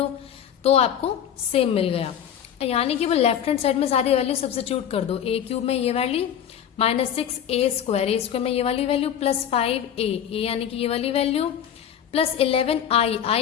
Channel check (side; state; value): right; quieter; 9.4 dB